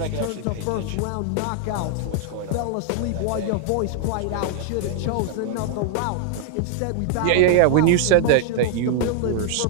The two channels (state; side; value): different; both; correlation 0.00